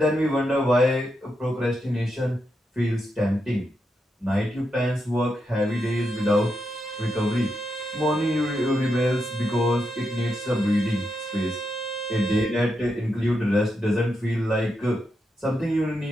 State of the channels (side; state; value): both; normal; correlation 0.84